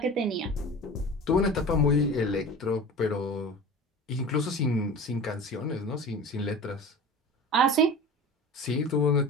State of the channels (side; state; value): both; normal; correlation 0.35